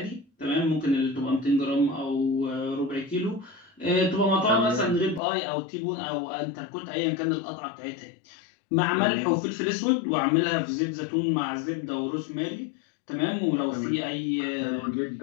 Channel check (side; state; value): right; drops out; at 5.2 s